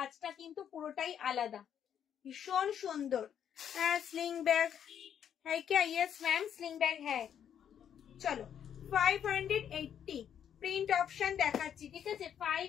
কিন্তু পুরোটাই আলাদা, ভীষণ সুন্দর। হ্যাঁ স্লিং ব্যাগ হ্যাঁ क्या? यस मैम स्लिंग बैग है। চলো 580 প্রিন্ট অপশন দেখাচ্ছি, ঠিক আছে?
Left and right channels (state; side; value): quieter; right; 9.0 dB